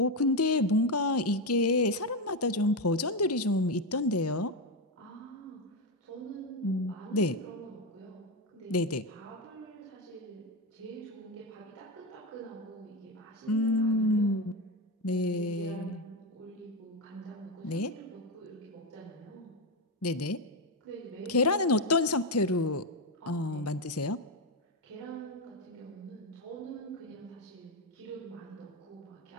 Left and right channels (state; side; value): normal; both; correlation 0.10